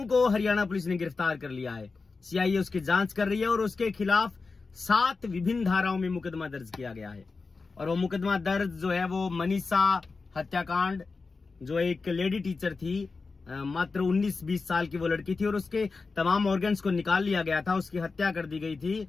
को हरियाणा पुलिस ने गिरफ्तार कर लिया है। सीआईए उसकी जांच कर रही है और उसके खिलाफ 7 विभिन्न धाराओं में मुकदमा दर्ज किया गया है। और वो मुकदमा दर्ज जो है वो मनीषा हत्याकांड, जो एक लेडी टीचर थी, मात्र 19-20 साल की वो लड़की थी और उसके तमाम ऑर्गन्स को निकाल लिया गया था, उसकी हत्या कर दी गई थी।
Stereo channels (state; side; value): quieter; right; 4.2 dB